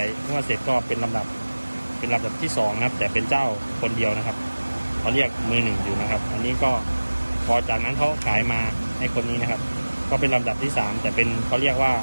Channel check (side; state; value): both; inverted; correlation -1.00